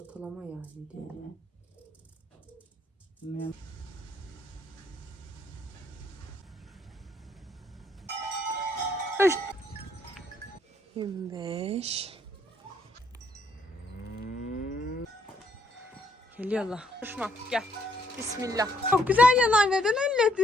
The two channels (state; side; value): normal; both; correlation 0.70